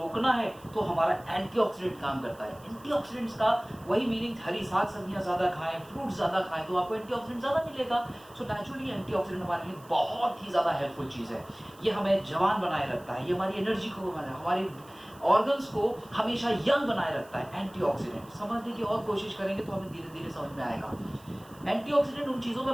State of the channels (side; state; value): right; noise; hiss, 25 dB below the sound